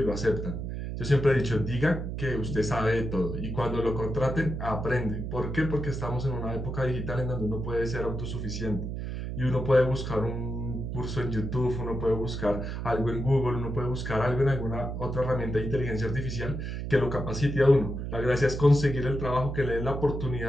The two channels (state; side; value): noise; right; hum, 5 dB below the sound